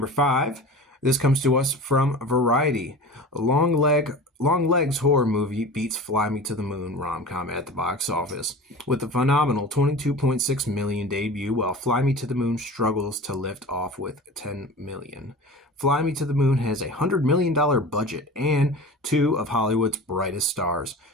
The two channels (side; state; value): both; normal; correlation 0.35